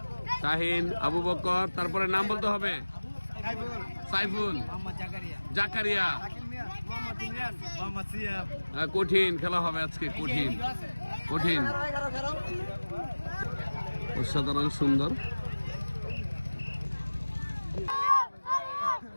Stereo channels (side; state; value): both; inverted; correlation -1.00